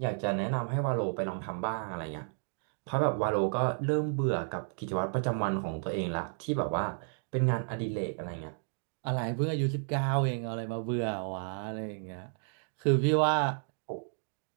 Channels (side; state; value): left; silent; 56 dB below the other